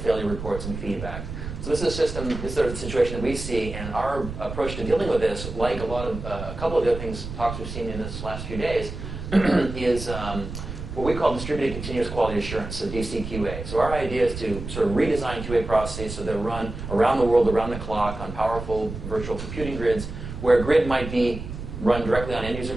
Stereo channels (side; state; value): right; noise; rumble, 8 dB below the sound